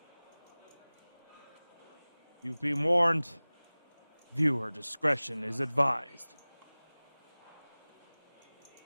You've been warned. Viewer discretion is advised.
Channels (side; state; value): both; inverted; correlation -1.00